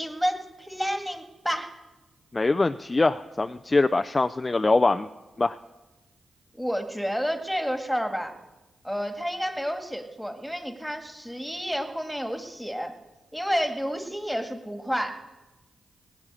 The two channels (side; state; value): both; normal; correlation 0.98